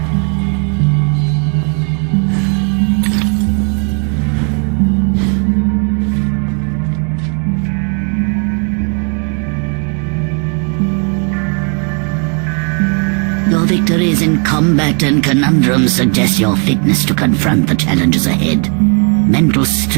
Your victories in combat and conundrums suggest your fitness to confront the challenges ahead. Mental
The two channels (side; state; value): left; quieter; 38.7 dB